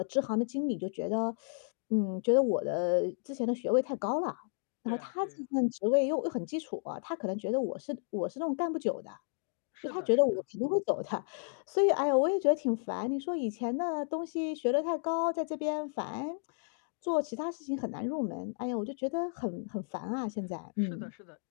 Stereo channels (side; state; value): right; silent; digital silence